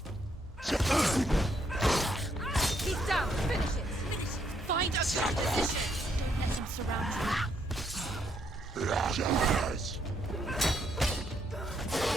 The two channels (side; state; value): both; normal; correlation 0.73